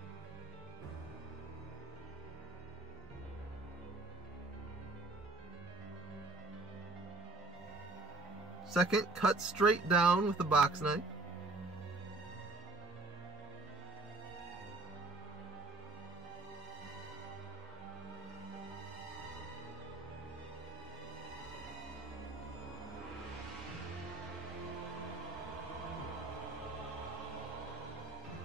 Second, cut straight down with a box knife.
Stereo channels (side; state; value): left; quieter; 3.2 dB